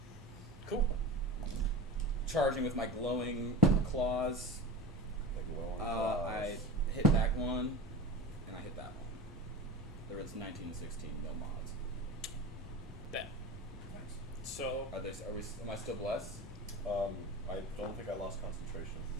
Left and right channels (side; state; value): both; normal; correlation 0.31